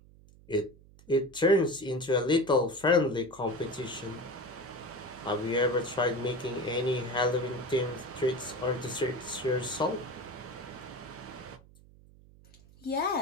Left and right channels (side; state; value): right; noise; hum, 24 dB below the sound